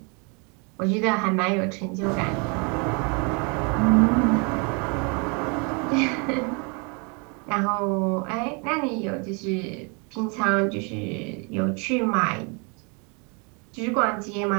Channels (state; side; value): quieter; left; 33.4 dB